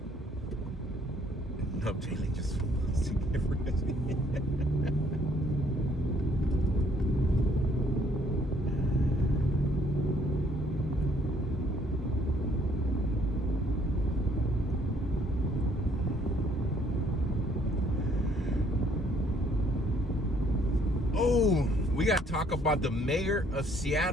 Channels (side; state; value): both; normal; correlation 0.64